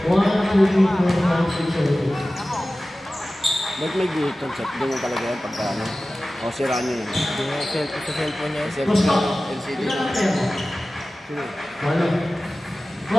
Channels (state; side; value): normal; both; correlation 0.96